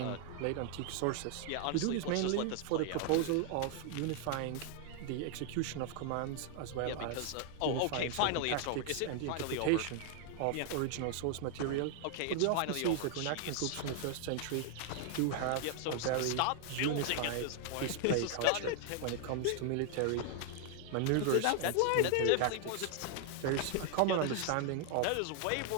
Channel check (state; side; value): different; both; correlation 0.00